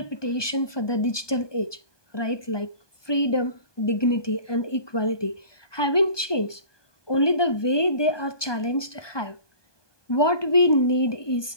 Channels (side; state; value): right; late; 1.2 ms